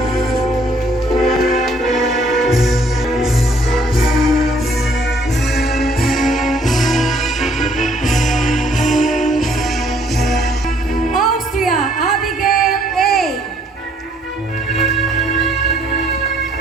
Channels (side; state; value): both; normal; correlation 0.64